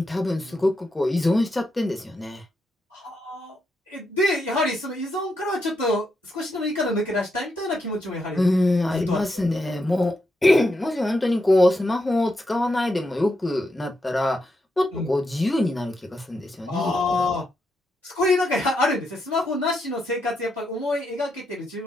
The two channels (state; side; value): normal; both; correlation 0.82